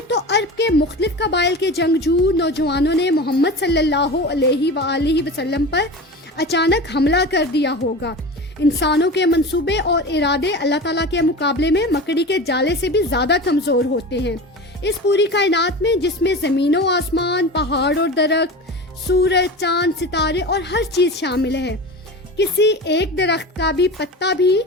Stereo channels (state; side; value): normal; both; correlation 0.31